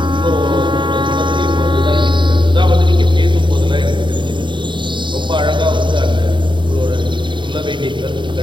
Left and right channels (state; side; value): late; left; 0.23 ms